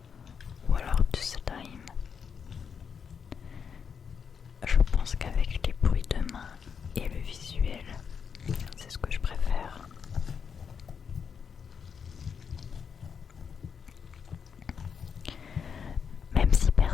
ou alors du slime. Je pense qu'avec les bruits de main et le visuel, c'est ce que je préfère. Même si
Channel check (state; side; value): quieter; right; 6.7 dB